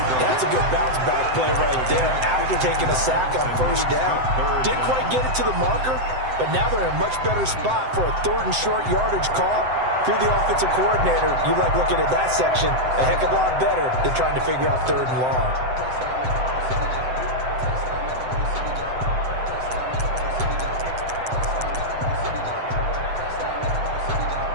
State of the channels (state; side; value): late; left; 7.8 ms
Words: That's a good bounce-back play right there after taking a sack on first down. Didn't quite get it to the marker, but now they're in a much better spot for a 3rd and short yardage call. If you're the offensive coordinator, you like looking at that section a heck of a lot better than trying to figure out 3rd and long.